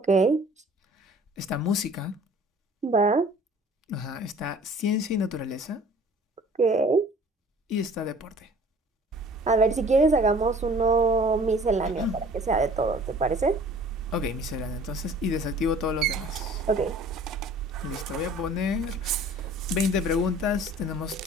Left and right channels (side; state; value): both; normal; correlation 0.50